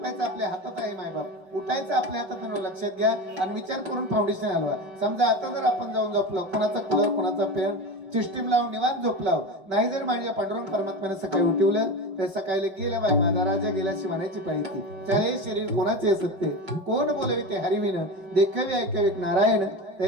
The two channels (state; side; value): late; left; 5.3 ms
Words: आपल्या हातात आहे मायबाप, उठायचं आपल्या हातात आहे. लक्षात घ्या आणि विचार करून फाउंडेशन हलवा. समजा आता जर आपण जाऊन झोपलो, कुणाचा कूलर कुणाचा फॅन सिस्टीम लावून निवांत झोपलाव नाही, जर माझ्या पांडुरंग परमात्म्याने सकाळी उठवलं तर सकाळी गेल्या बाय माझा राजा गेल्याशी म्हणायची पाहिजे. चाले शरीर कोणाचे असत ते, कोण बोलवे ते हरिविन, देखावे ऐकावे नारायण,